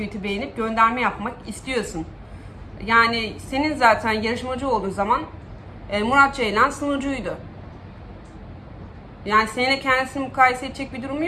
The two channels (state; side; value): identical; both; correlation 1.00